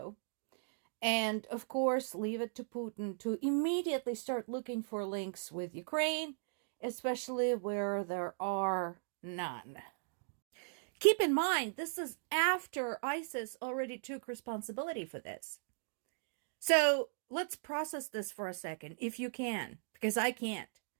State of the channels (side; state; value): left; silent; digital silence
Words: And, of course, leave it to Putin to immediately start looking for links with Ukraine, especially where there are none. Keep in mind, this is after ISIS already took responsibility for this. So, let's process this for a second, if you can, because I can't.